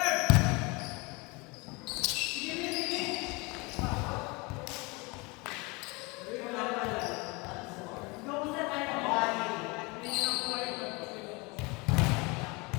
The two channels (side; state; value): right; quieter; 26.7 dB